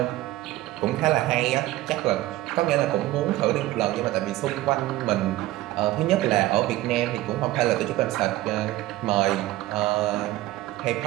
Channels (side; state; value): left; quieter; 16.7 dB